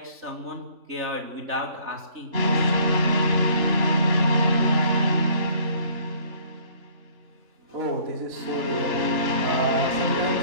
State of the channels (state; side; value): late; left; 3.4 ms